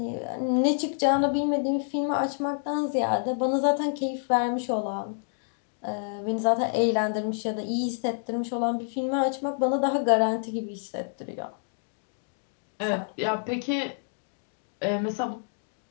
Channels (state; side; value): silent; right; digital silence